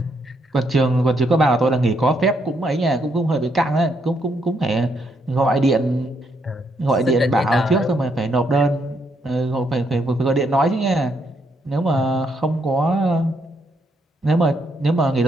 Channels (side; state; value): both; normal; correlation 0.75